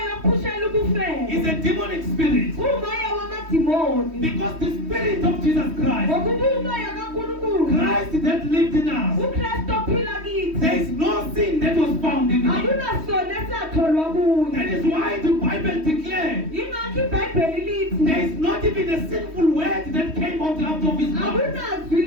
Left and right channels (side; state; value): left; late; 3.1 ms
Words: is a demonic spirit. Because the spirit of Jesus Christ, Christ that lived in us, there is no sin that was found in him. That is why the Bible declares there is not even a sinful word that came out of his mouth.